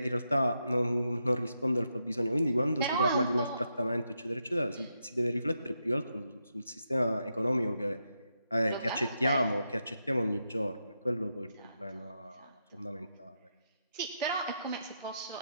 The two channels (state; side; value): inverted; both; correlation -0.83